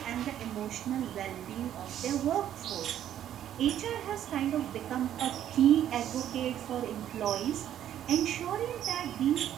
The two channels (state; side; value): quieter; left; 11.0 dB